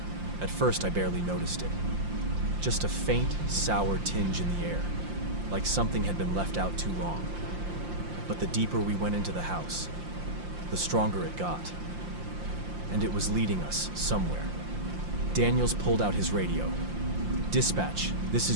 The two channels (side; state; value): left; late; 5.7 ms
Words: At first, I barely noticed it. Just a faint, sour tinge in the air, like something had been left out too long. But the deeper we went into the house, the stronger it got. And it was leading us somewhere. Daniels pulled out his radio. Dispatch, this